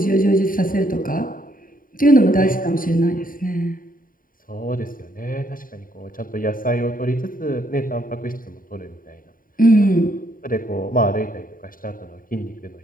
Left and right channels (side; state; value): right; late; 0.41 ms